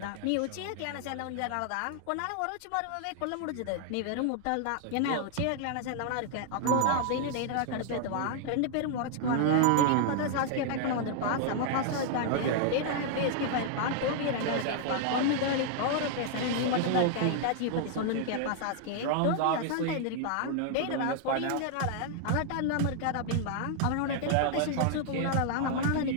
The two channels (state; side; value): different; both; correlation 0.00